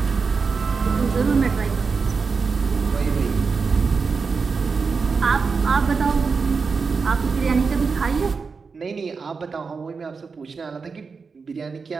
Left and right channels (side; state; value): left; quieter; 5.0 dB